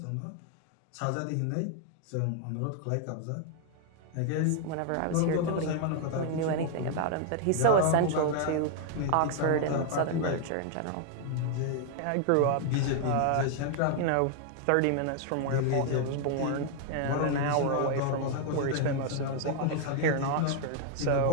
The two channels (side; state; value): both; different; correlation 0.00